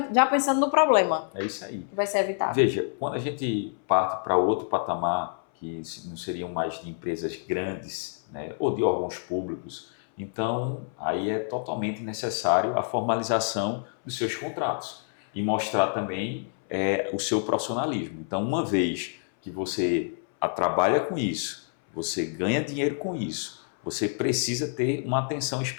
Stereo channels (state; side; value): silent; right; 60 dB below the other